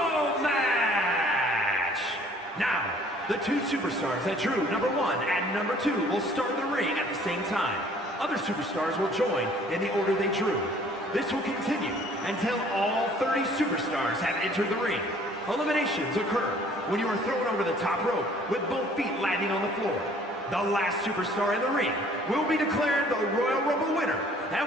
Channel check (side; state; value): both; normal; correlation 0.56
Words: match. Now, the two superstars that drew number 1 and number 2 will start the ring at the same time. Other superstars will join in the order they drew. This will continue until all 30 superstars have entered the ring. Eliminations occur when you are thrown over the top rope with both feet landing on the floor. The last superstar in the ring will be declared the Royal Rumble winner and